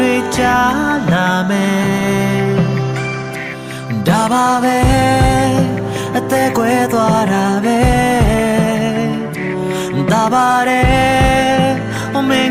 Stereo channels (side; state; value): both; identical; correlation 1.00